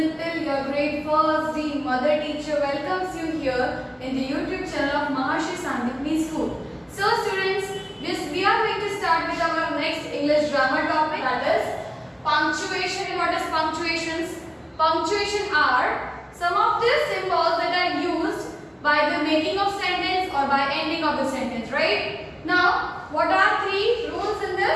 your grade 1st D mother teacher welcomes you here in the YouTube channel of Maharshi Sandipani School. So students, we are going to start with our next English grammar topic, that is punctuation. And what is punctuations? Punctuation are some of the symbols that are used by the making of sentence or by ending of the sentence, right? Now, what are three rules in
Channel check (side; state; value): both; identical; correlation 1.00